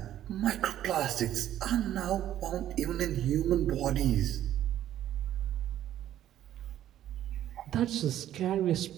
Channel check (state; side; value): quieter; left; 12.0 dB